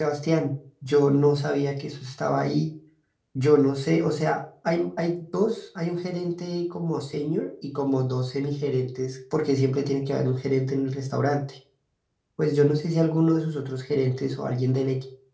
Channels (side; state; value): both; identical; correlation 1.00